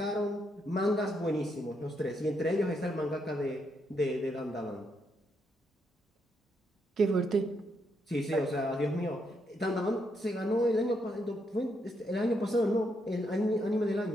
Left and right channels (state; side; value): normal; both; correlation 0.78